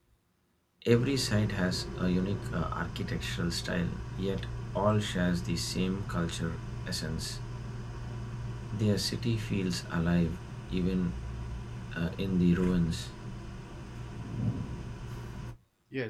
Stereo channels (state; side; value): identical; both; correlation 1.00